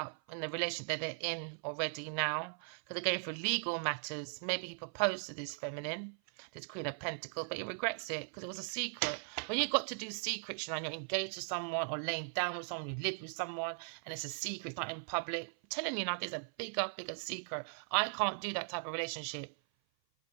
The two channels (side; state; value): left; silent; 52 dB below the other